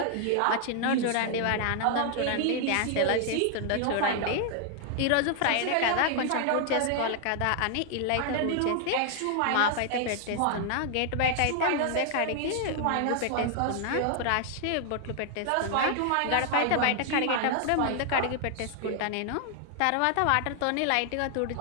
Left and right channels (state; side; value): different; both; correlation 0.00